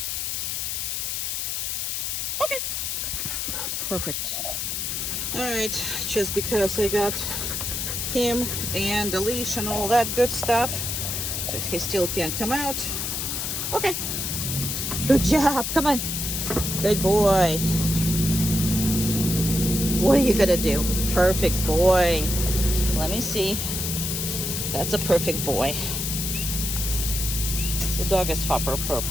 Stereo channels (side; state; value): left; noise; hiss, 2 dB below the sound